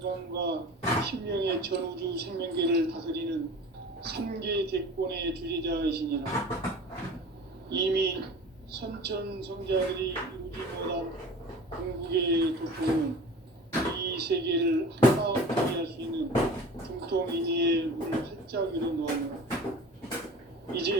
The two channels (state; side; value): normal; both; correlation 0.39